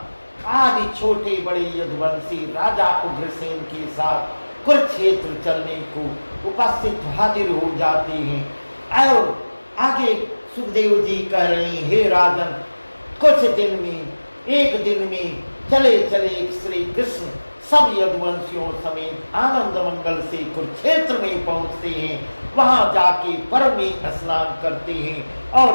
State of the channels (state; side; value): inverted; both; correlation -1.00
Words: आदि छोटे बड़े यदुवंशी राजा उग्रसेन के साथ कुरुक्षेत्र चलने को उपस्थित हाजिर हो जाते हैं। और आगे सुखदेव जी कह रहे हैं, हे राजन, कुछ दिन में, एक दिन में चले चले श्री कृष्ण सब यदुवंशियों समेत आनंद मंगल से कुरुक्षेत्र में पहुंचते हैं। वहां जाके पर्व में स्नान करते हैं और